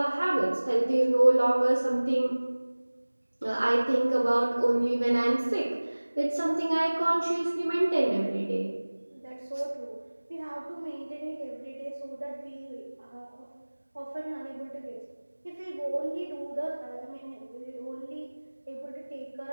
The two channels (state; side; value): inverted; both; correlation -1.00